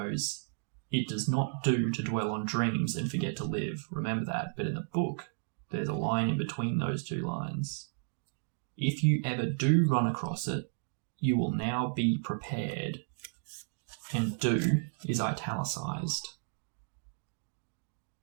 "It does not do to dwell on dreams and forget to live." Remember that. But in the book, there's a line in between those two lines. "If you ever do run across it, you will now be prepared." And "do" is italicized.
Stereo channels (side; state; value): left; silent; digital silence